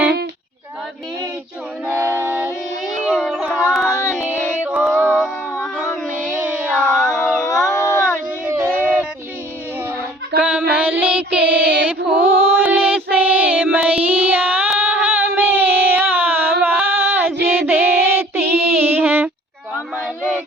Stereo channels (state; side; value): normal; both; correlation 0.53